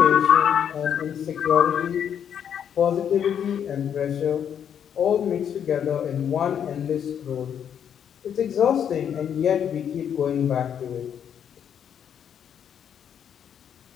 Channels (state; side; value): quieter; right; 8.7 dB